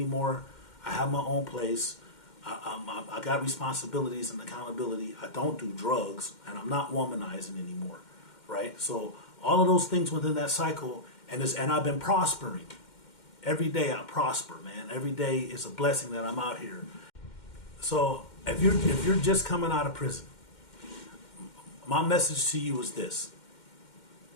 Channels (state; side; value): late; right; 2.1 ms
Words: I have my own place. I got responsibilities and accountability. I don't do drugs, and I'm not womanizing anymore. Right? So all of those things within that cycle, and I've been prospering. Every day I prosper, man. Every day is a blessing that I'm out here. So if you're just coming out of prison, my message to you is this: